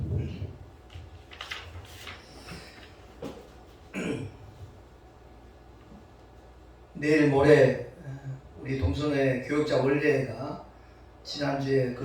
내일 모레 우리 동성애 교역자 원례가 지난주에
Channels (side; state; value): both; identical; correlation 1.00